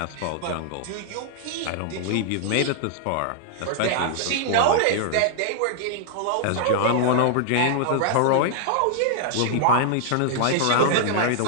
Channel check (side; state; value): both; different; correlation -0.01